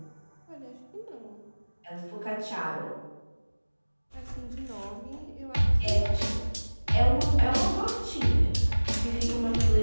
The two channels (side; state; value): both; inverted; correlation -1.00